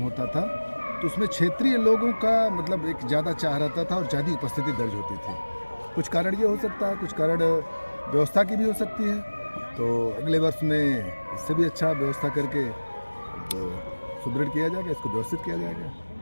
होता था, तो उसमें क्षेत्रीय लोगों का मतलब एक ज़्यादा चाह रहता था और ज़्यादा उपस्थिति दर्ज होती थी। कुछ कारण ये हो सकता है, कुछ कारण व्यवस्था की भी हो सकती है। तो अगले वर्ष में इससे भी अच्छा व्यवस्था करके सुदृढ़ किया जाएगा, इसको व्यवस्थित किया जाएगा।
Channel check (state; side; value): inverted; both; correlation -1.00